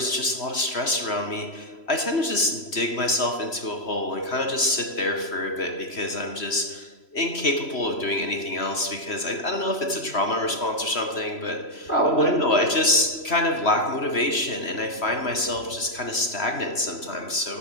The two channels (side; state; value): right; late; 3.0 ms